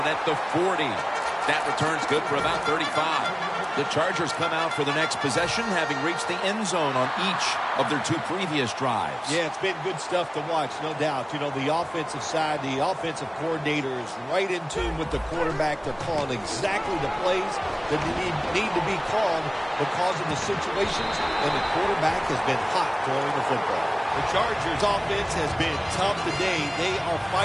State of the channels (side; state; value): both; identical; correlation 1.00